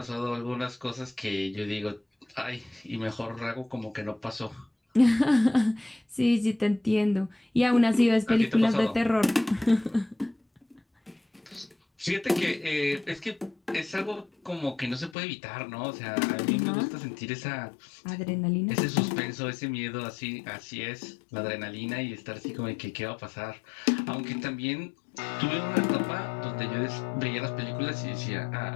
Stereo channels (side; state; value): right; drops out; at 15.2 s